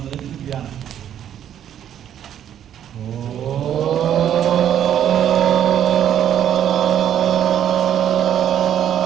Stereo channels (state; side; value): quieter; left; 10.1 dB